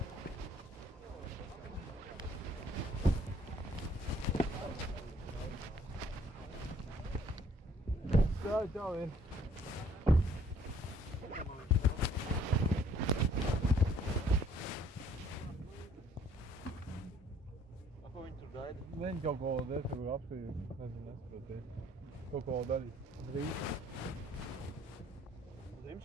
Čau, ir. Ko viņi tur gaida? Viņi kaut ko desmit apstīju, nesaproties. Kaut ko darīt. Drīz.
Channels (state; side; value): normal; both; correlation 0.60